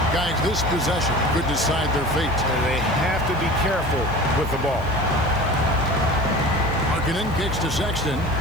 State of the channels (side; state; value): left; noise; hiss, 26 dB below the sound